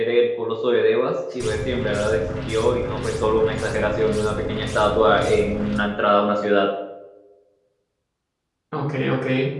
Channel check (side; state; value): both; identical; correlation 1.00